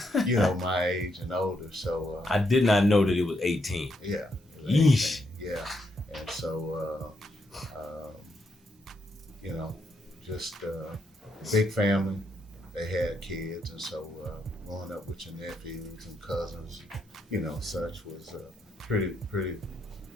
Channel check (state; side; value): normal; both; correlation 0.78